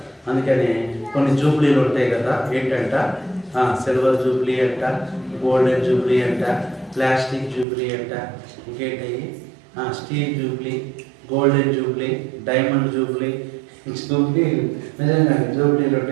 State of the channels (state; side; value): drops out; left; at 7.7 s